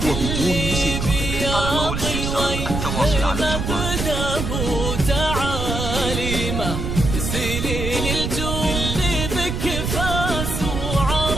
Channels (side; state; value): right; noise; rumble, 3 dB below the sound